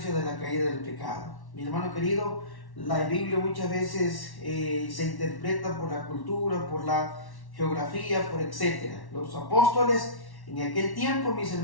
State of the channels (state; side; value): late; right; 1.1 ms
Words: de la caída del pecado. Mi hermano querido, La Biblia muchas veces se interpreta por la cultura, por la geografía, por etcétera. Los apóstoles en aquel tiempo, mis